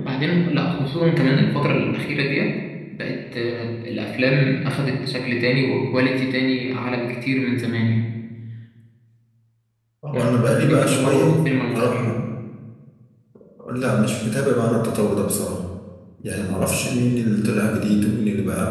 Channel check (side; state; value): both; identical; correlation 1.00